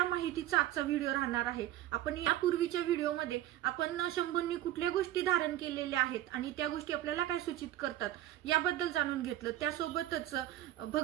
माहितीचा आजचा व्हिडिओ राहणार आहे. आपण यापूर्वीच्या व्हिडिओमध्ये आपण शंभूंनी कुठल्या गोष्टी धारण केलेल्या आहेत आणि त्या गोष्टी आपल्याला काय सूचित करतात याबद्दल जाणून घेतलं. त्यासोबतच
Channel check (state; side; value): quieter; left; 13.6 dB